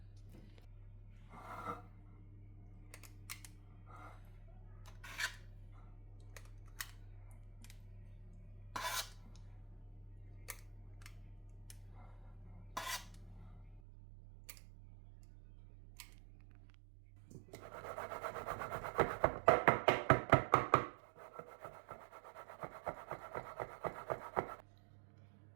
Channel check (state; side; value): drops out; left; at 13.8 s